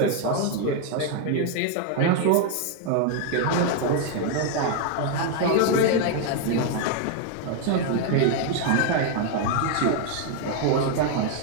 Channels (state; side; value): different; both; correlation 0.01